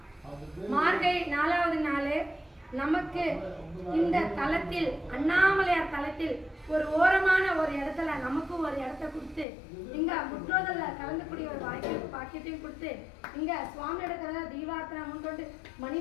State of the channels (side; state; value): right; drops out; at 9.5 s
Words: மார்கழி 4வது நாள். நமக்கு இந்த தலத்தில் அண்ணாமலையார் தலத்தில் ஒரு ஓரமான ஒரு இடத்துல நமக்கு ஒரு இடத்த கொடுத்து இங்க முற்றோதல்ல கலந்துக்கூடிய ஒரு வாய்ப்பு பாக்கியத்தையும் கொடுத்து இங்க சுவாமியோட கதை தீபார்த்தனை முன்கொண்டு